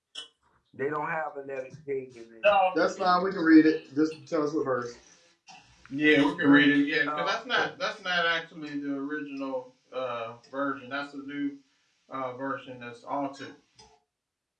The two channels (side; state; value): both; identical; correlation 1.00